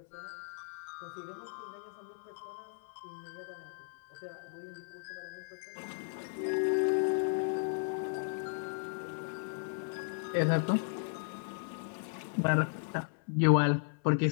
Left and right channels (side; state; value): right; silent; 54 dB below the other